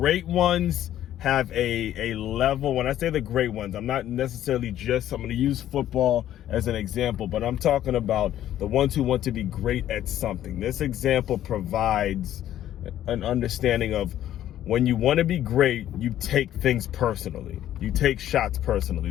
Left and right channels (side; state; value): right; quieter; 12.1 dB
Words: ones have a level. When I say the great ones, I'm not necessarily I'm going to use football as an example, but I'm talking about the ones who want to be great at something. This example provides an understanding of when you want to be great, you take things personally. You take shots